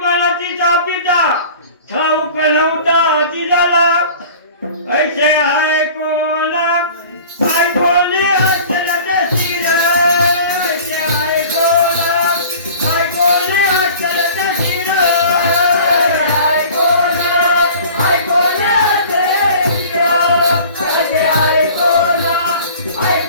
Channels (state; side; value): inverted; both; correlation -0.43